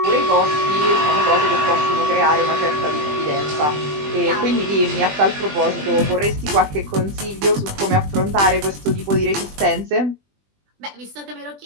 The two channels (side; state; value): left; late; 20 ms